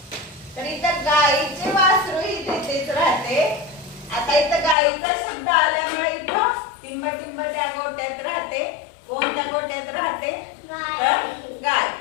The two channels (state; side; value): drops out; right; at 4.8 s